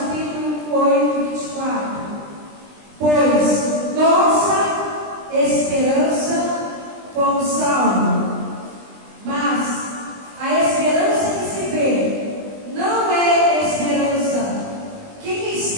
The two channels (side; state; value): left; late; 20 ms